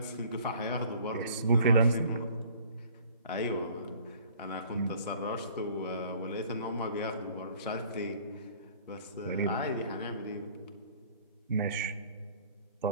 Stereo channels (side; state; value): both; inverted; correlation -0.53